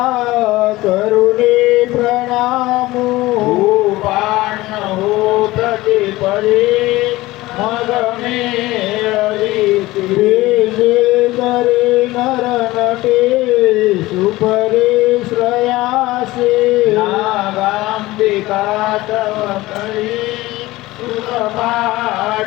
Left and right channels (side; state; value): right; quieter; 18.7 dB